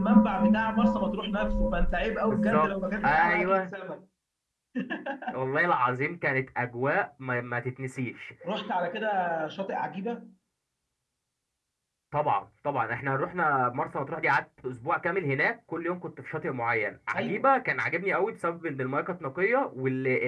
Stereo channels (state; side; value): identical; both; correlation 1.00